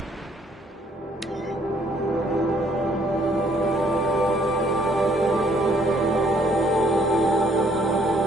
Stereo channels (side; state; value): both; normal; correlation 0.65